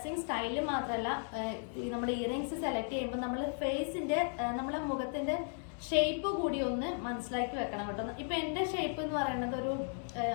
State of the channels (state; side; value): silent; right; 54 dB below the other